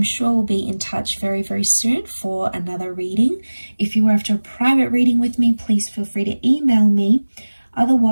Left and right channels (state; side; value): inverted; both; correlation -1.00